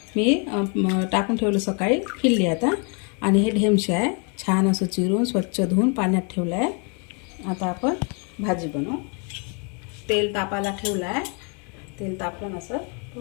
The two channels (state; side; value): quieter; right; 36.7 dB